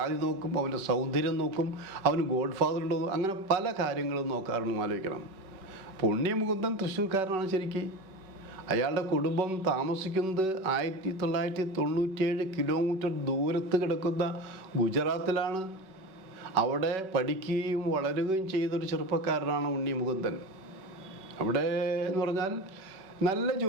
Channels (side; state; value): left; late; 5.3 ms